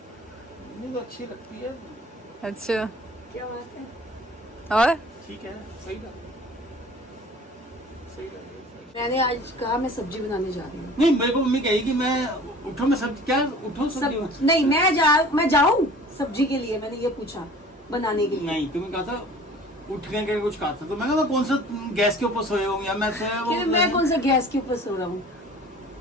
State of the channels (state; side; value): normal; both; correlation 0.46